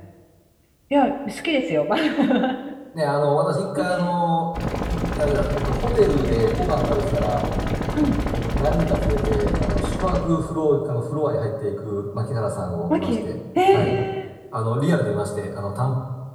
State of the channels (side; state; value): both; identical; correlation 1.00